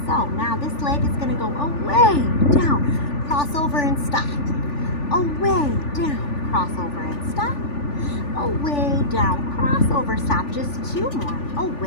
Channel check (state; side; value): late; right; 3.4 ms